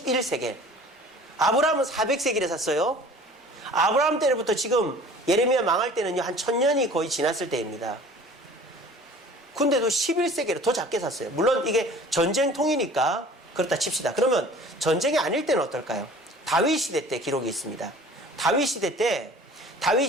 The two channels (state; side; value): normal; both; correlation 0.47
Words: 아브라함은 400세겔에 샀어요. 아브라함 때부터 지금 예레미야 망할 때는요, 한 1000년이 거의 지났을 때입니다. 근데도 11세겔을 더 작게 샀어요. 물론 이게 전쟁통이니까 그렇다 칩시다. 그러면 전쟁이 아닐 때는 어떨까요? 다윗 시대 때 기록이 있습니다. 다윗 시대 때